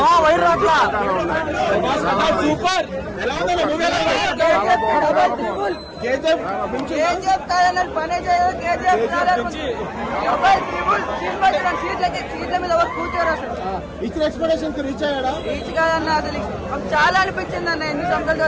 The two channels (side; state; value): both; identical; correlation 1.00